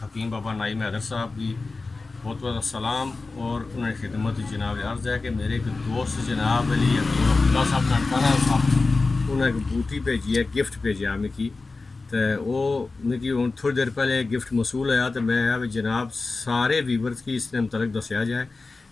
हकीम बाबा नाइम हैदर साहब की बहुत बहुत सलाम और उन्हें खिदमत जनाब अर्ज़ है कि मेरे एक दोस्त जनाब अली अब्दुल्ला साहब ननकाना साहब उन्हें एक बूटी भेजी है, गिफ्ट भेजा मिगी। तो वो मिगी हूँ थोड़ी देर पहले गिफ्ट मसूल होया तो मैं जनाब सारे वीवर्स की इसने मतलब दसिया जाए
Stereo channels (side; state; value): right; quieter; 3.7 dB